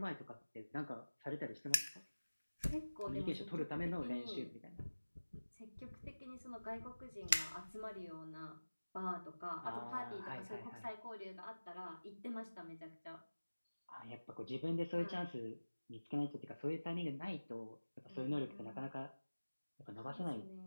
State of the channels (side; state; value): both; inverted; correlation -1.00